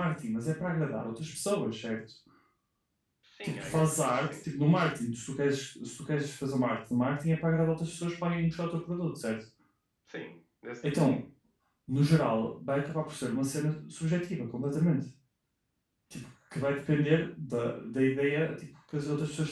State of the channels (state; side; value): identical; both; correlation 1.00